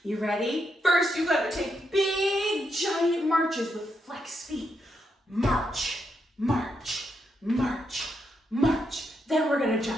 You ready? First, you gotta take big giant marches with flexed feet. March, march, march, march. Then we're gonna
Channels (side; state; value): both; normal; correlation 0.81